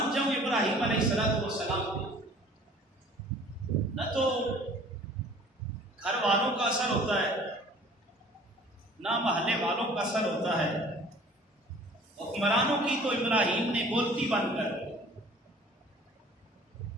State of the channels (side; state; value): both; normal; correlation 0.50